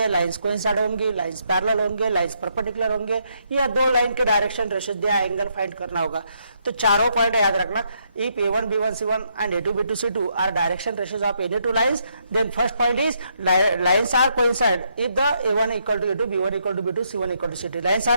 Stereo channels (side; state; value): both; inverted; correlation -0.75